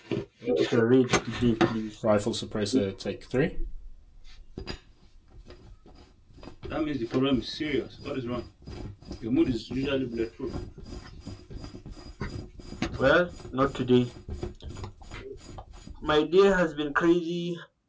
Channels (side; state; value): both; identical; correlation 1.00